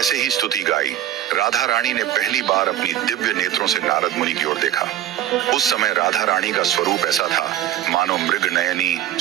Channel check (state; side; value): quieter; left; 12.2 dB